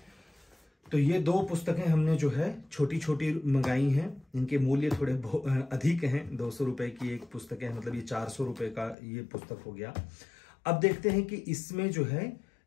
तो ये दो पुस्तकें हमने जो है छोटी छोटी मंगाई हैं, इनके मूल्य थोड़े अधिक हैं। 200 रुपए की एक पुस्तक है, मतलब ये 400 रुपए का ये पुस्तक हो गया। अब देखते हैं कि इसमें जो है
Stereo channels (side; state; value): right; drops out; at 9.0 s